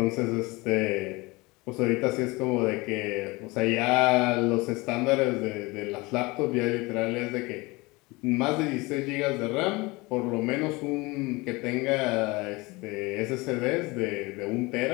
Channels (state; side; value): quieter; right; 23.8 dB